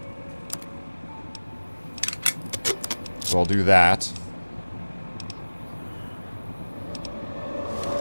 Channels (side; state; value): both; inverted; correlation -1.00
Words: So I'll do that.